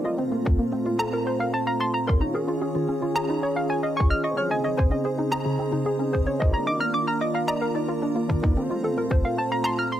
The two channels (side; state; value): both; normal; correlation 0.86